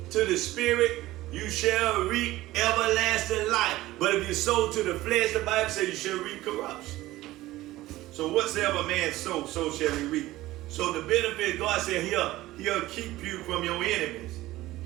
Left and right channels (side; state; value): left; quieter; 16.9 dB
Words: to the Spirit, you shall reap everlasting life. But if you sow to the flesh, the Bible says you shall reap corruption. So whatsoever man sow, so shall he reap. So the benefit, God said, he'll keep you from your enemies.